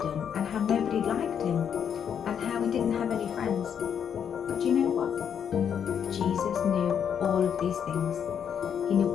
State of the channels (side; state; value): right; quieter; 8.1 dB